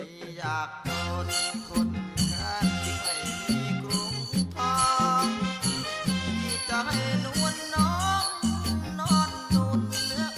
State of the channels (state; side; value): identical; both; correlation 1.00